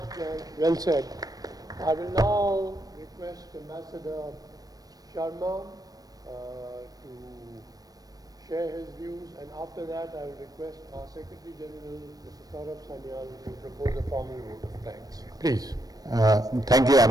Well said. I will now request Ambassador Sharma to share his views, and after that I will request our Secretary General, Mr. Saurabh Sanyal, to propose a formal vote of thanks. Please. Thank you,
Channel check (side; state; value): left; late; 0.18 ms